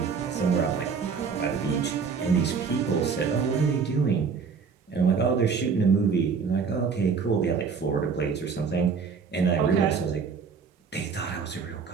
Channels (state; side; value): quieter; left; 5.6 dB